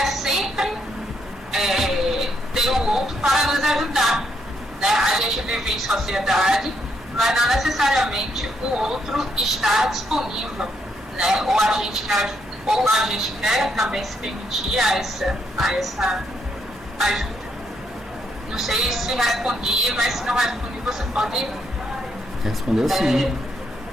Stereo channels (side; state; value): both; normal; correlation 0.76